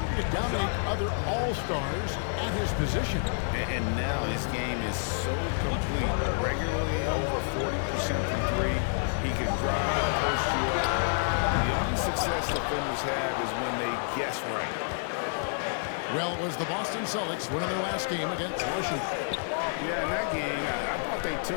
to dominate other all-stars at his position. And now his game is so complete. Regularly over 40% from three. He can drive it, post you up. The only success defenders have is when they guess right. Well, it was the Boston Celtics winning their last game against Washington. Yeah, in that game, I thought they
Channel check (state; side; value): silent; right; digital silence